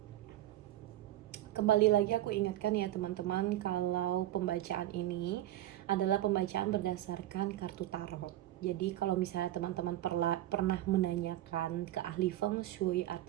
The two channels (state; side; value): quieter; left; 14.1 dB